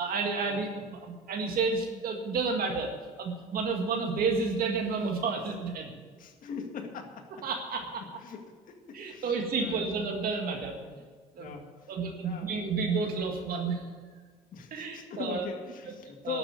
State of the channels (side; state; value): left; quieter; 3.6 dB